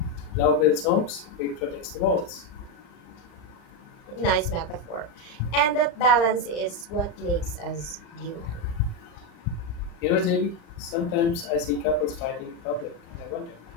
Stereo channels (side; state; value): right; late; 35 ms